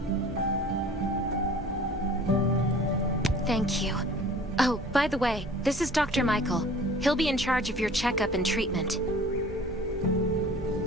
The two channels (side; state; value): both; normal; correlation 0.47